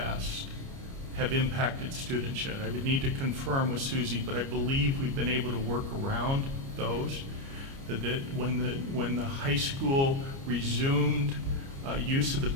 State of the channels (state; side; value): late; left; 29 ms